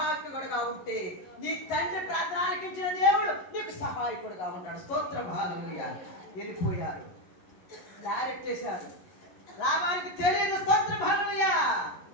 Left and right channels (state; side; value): late; right; 11 ms